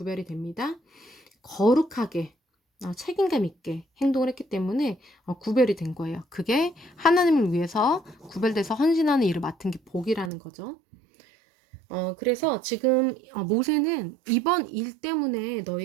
됩니다. 거룩하게 책임감 있게 행동을 했기 때문에 구별이 된 거예요. 그게 하나님을 위해서 구별돼서 헌신하는 일을 맡은 게 복이라는 거죠. 그래서 지금 모세는 이번 일 때문에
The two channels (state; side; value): drops out; left; at 10.3 s